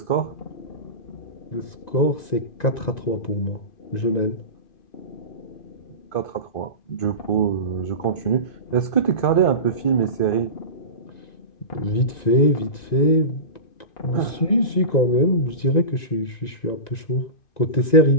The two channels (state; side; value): late; right; 1.9 ms